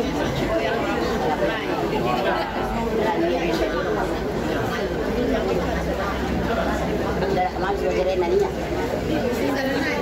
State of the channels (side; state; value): both; identical; correlation 1.00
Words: Darah masuk dari nanya.